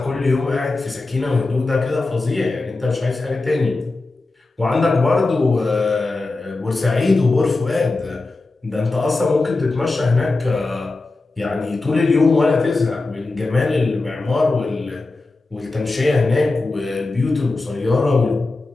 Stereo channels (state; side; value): quieter; right; 3.4 dB